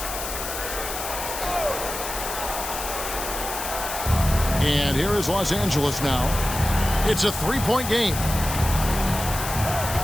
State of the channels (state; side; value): noise; left; hiss, 6 dB below the sound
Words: And here is Los Angeles now. It's a 3-point game.